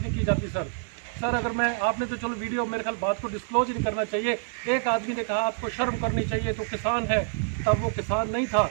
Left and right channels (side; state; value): left; silent; 60 dB below the other